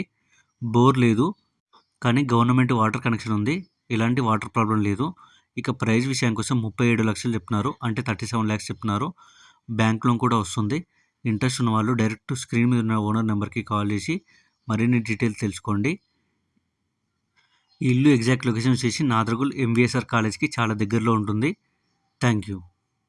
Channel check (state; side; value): identical; both; correlation 1.00